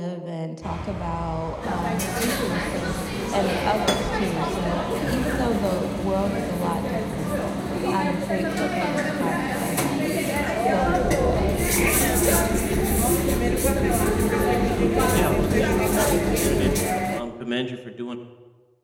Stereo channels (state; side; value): identical; both; correlation 1.00